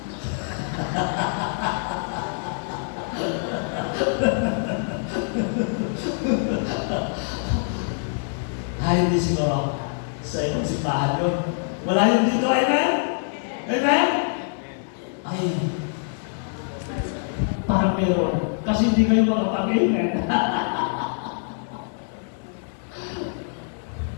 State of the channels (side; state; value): right; silent; digital silence